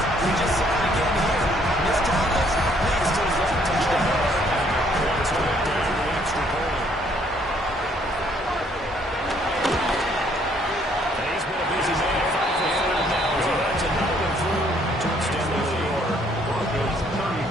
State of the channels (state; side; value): normal; both; correlation 0.65